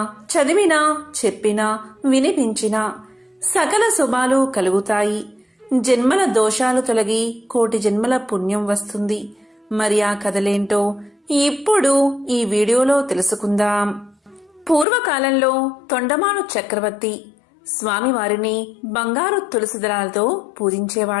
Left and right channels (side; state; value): right; drops out; at 14.9 s